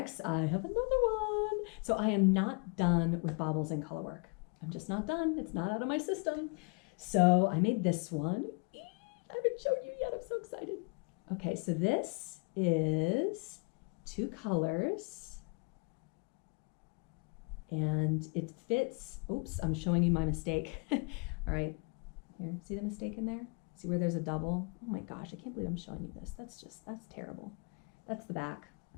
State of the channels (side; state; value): right; quieter; 34.0 dB